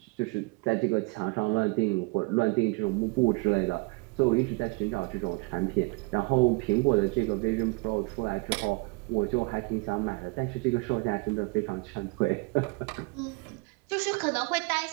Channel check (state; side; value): quieter; left; 28.5 dB